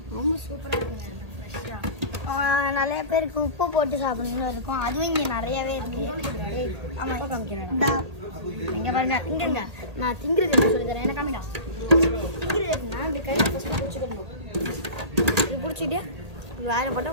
ரொம்ப சூப்பராக இருக்குங்க. நிறைய பேருக்கு உப்பு போட்டு சாப்பிடணும்னு இருக்கும். அதுவும் இங்கே நிறையாவே இருக்கு. இங்கே பாருங்க, திங்குங்க. நான் திங்குறது என்ன சொல்லி தரேன். என்ன காமிடா திங்குறது இருக்குன்னா இப்படி கை ஃபஸ்ட்டு பிடிச்சிக்கணும். இது பிடிச்சிட்டு வேலை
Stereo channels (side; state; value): left; late; 1.8 ms